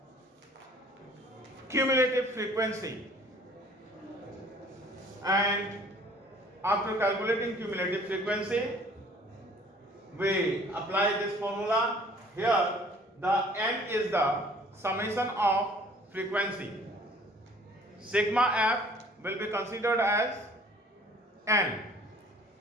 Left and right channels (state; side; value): normal; both; correlation 0.54